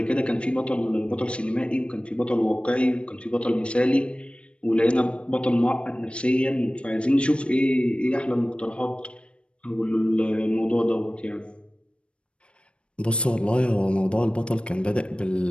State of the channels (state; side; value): late; right; 0.058 ms